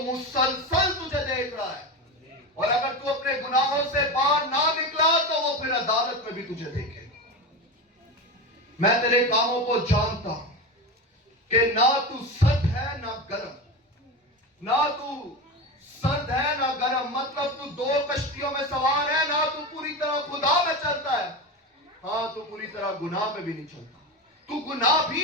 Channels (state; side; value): normal; both; correlation 0.22